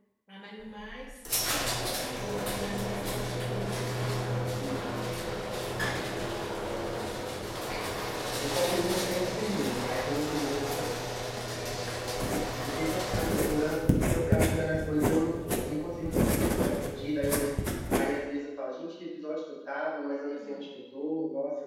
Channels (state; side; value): identical; both; correlation 1.00